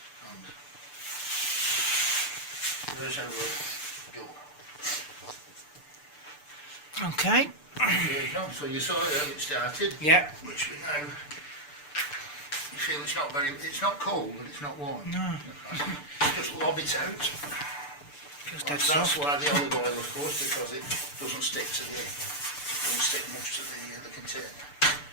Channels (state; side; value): late; right; 6.8 ms